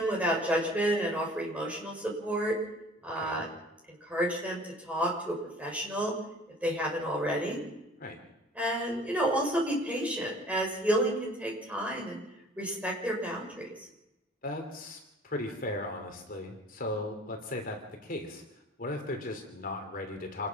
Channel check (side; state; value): both; normal; correlation 0.49